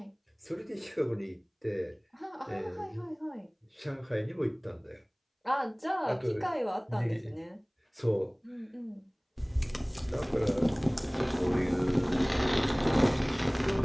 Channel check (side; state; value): both; identical; correlation 1.00